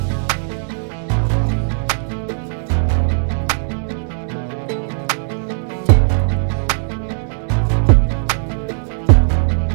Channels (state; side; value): silent; left; digital silence